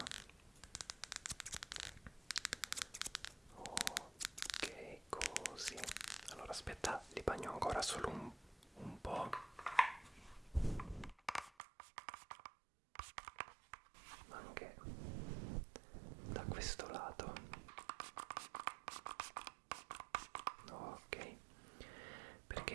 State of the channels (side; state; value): left; drops out; at 11.5 s